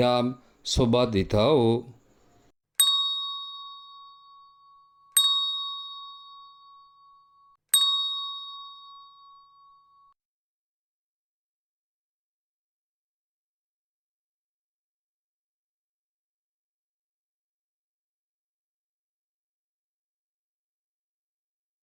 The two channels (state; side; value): identical; both; correlation 1.00